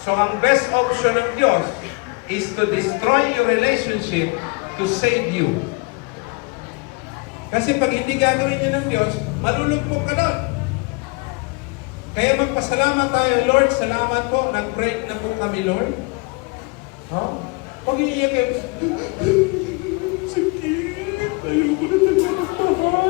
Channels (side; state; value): right; quieter; 29.8 dB